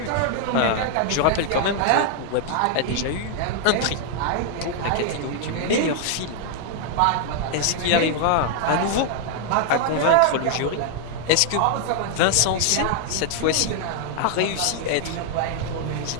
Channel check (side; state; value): both; different; correlation 0.00